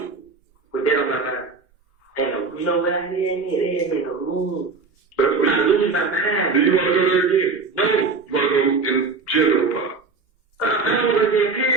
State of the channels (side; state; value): left; quieter; 4.3 dB